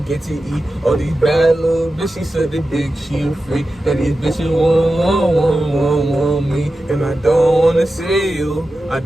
to eat. All these bad little bitches said they think she a freak. That these bitches want me. And I don't wanna see you. I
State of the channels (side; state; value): both; normal; correlation 0.92